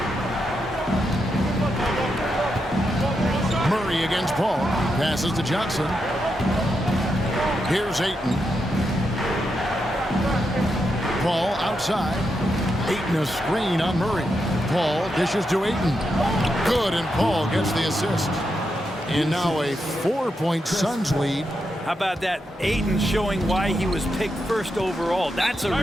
Murray against Paul. Passes to Johnson. Here's Ayton. Paul outside. Ayton a screen on Murray. Paul dishes to Ayton. Good, and Paul gets the assist. And now a 4-point Suns lead. How about that? Ayton showing why he was picked first overall. That's a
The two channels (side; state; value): both; normal; correlation 0.84